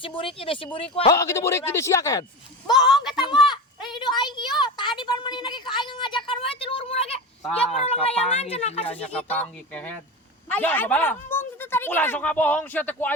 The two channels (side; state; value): both; normal; correlation 0.25